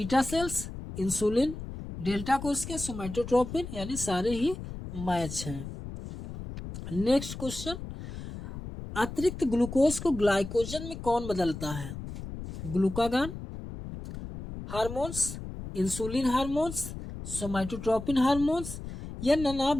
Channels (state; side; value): noise; left; rumble, 9 dB below the sound